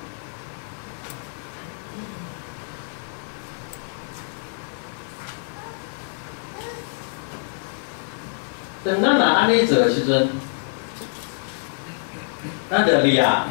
当咱若安尼做的时阵，咱着掠，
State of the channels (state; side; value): silent; right; 56 dB below the other